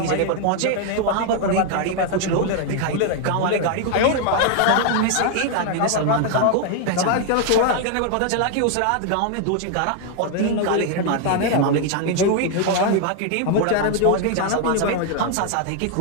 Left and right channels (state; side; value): different; both; correlation 0.00